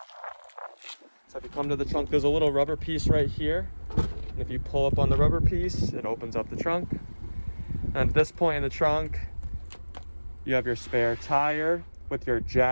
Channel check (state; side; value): inverted; both; correlation -1.00